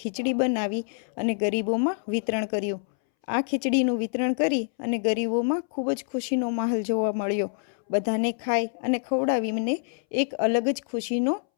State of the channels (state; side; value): silent; right; 61 dB below the other